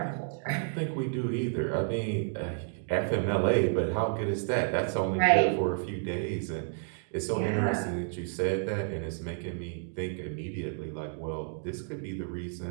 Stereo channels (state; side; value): silent; left; 57 dB below the other